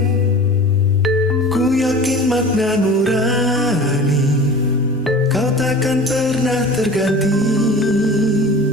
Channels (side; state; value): both; normal; correlation 0.38